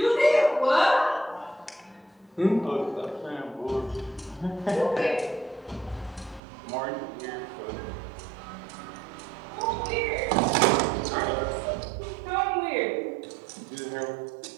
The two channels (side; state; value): left; drops out; at 6.4 s